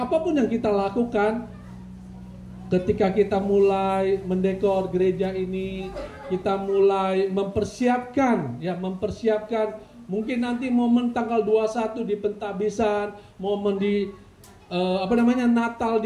apapun yang kita lakukan, ketika kita mulai mendekor gereja ini, kita mulai mempersiapkan mungkin nanti momen tanggal 21 di pentabisan, momen di Natal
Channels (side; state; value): both; identical; correlation 1.00